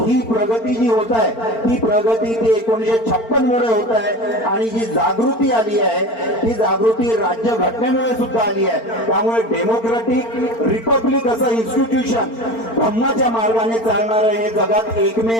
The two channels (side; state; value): right; late; 4.4 ms